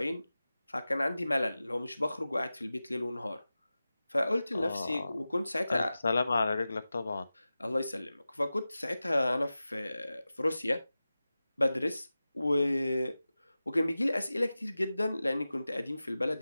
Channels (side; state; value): both; inverted; correlation -0.96